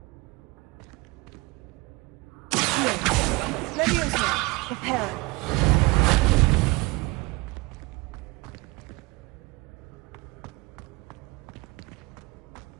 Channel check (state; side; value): quieter; left; 25.1 dB